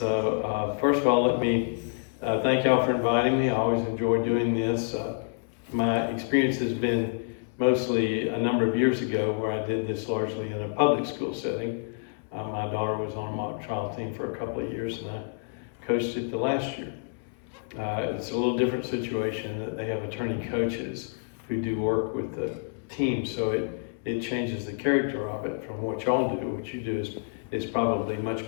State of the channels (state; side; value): silent; right; digital silence